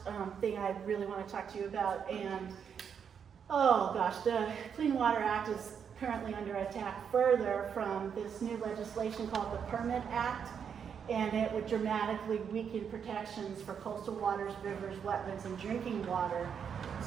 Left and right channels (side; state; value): left; quieter; 7.3 dB